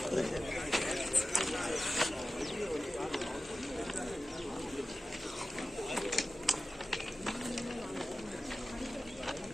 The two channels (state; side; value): normal; both; correlation 0.94